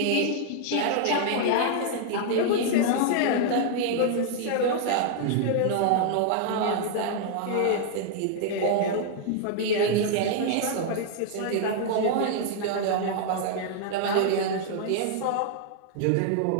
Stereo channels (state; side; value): different; both; correlation 0.00